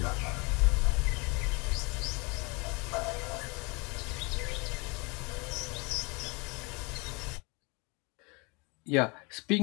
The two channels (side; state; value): right; quieter; 28.7 dB